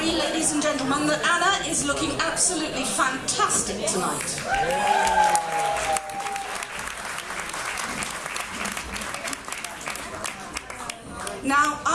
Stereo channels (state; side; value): identical; both; correlation 1.00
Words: ladies and gentlemen, that Anna is looking absolutely fantastic tonight. Now,